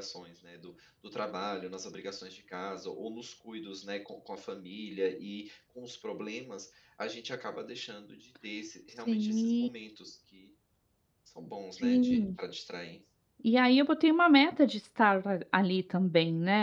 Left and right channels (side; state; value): both; identical; correlation 1.00